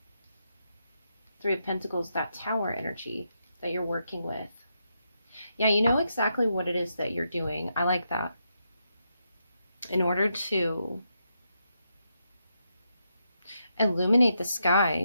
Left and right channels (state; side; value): inverted; both; correlation -0.82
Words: Three of Pentacles, that Tower energy that you're working with. Yeah, you know exactly what it is that you're doing. I like that. In order to illuminate the